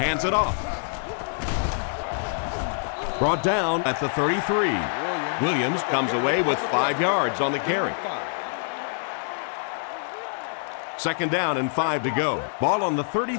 it off. Brought down at the 33. Williams comes away with 5 yards on the carry. Second down and 5 to go. Ball on the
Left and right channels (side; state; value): right; silent; 61 dB below the other